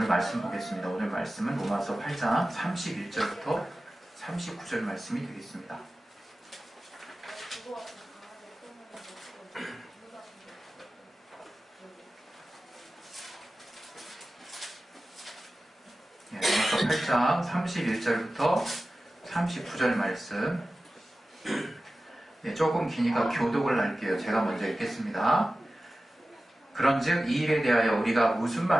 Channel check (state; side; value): normal; both; correlation 0.95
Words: 오늘 말씀 보겠습니다. 오늘 말씀은 로마서 8장 31절부터 39절 말씀이 되겠습니다. 로마서 8장 31절부터 39절 말씀. 조금 기니까 교독을 할게요. 제가 먼저 읽겠습니다. 그런즉 이 일에 대하여 우리가 무슨